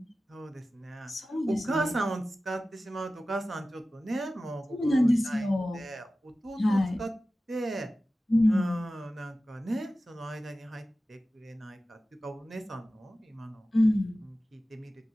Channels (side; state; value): both; normal; correlation 0.95